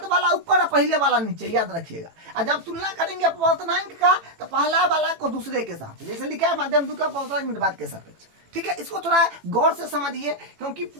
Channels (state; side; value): late; left; 18 ms